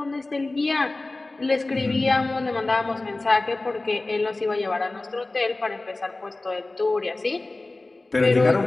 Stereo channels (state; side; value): quieter; right; 3.0 dB